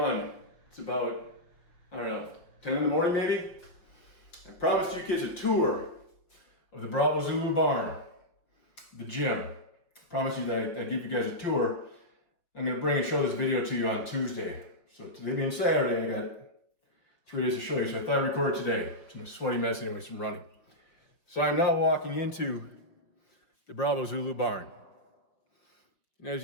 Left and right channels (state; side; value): late; right; 5.6 ms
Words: It's about, 10 in the morning maybe. I promised you kids a tour of the Bravo Zulu barn, the gym. I promised you that I'd give you guys a tour. I'm gonna bring and show this video to you on Tuesday. So today being Saturday, I got 3 days to show you. So I thought I'd record today. I'm a sweaty mess anyways from running. So I'm now walking into the Bravo Zulu barn. And